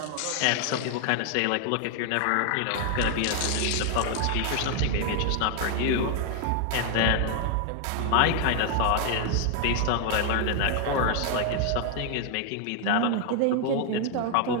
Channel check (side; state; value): both; different; correlation 0.00